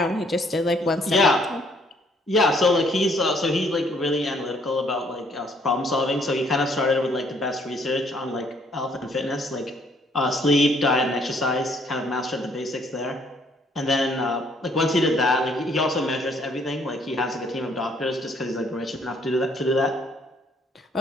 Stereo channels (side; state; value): both; normal; correlation 0.65